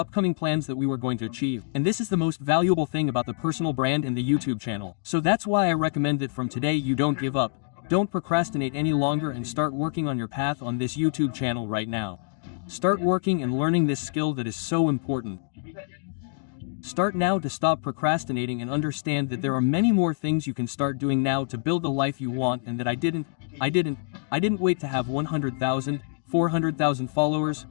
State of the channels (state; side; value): silent; right; digital silence